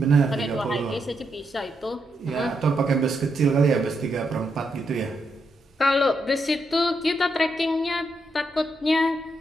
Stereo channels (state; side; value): normal; both; correlation 0.81